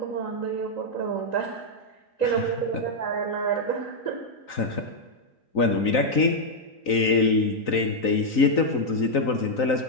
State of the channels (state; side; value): late; right; 3.9 ms